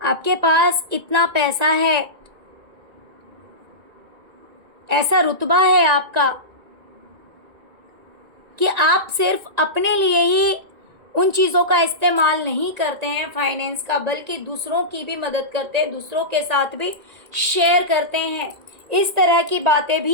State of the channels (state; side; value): late; left; 1.9 ms